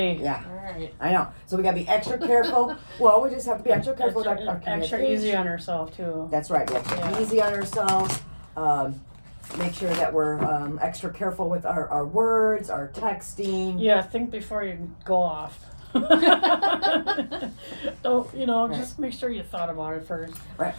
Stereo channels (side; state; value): both; inverted; correlation -1.00